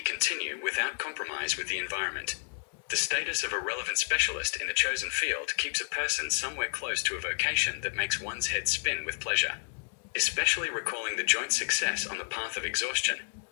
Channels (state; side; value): silent; right; digital silence